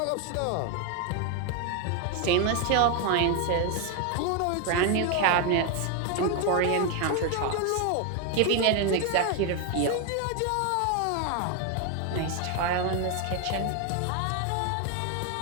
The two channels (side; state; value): both; different; correlation 0.01